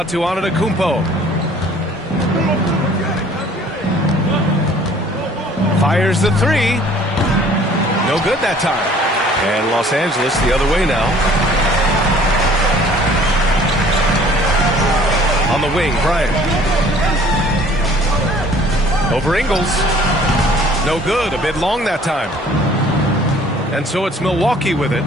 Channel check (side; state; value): both; normal; correlation 0.54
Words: to Antetokounmpo. Fires the three. No good that time. And Los Angeles the other way now. On the wing, Bryant. Over Ingles. No good. A bit long that time. And so it's Milwaukee with it.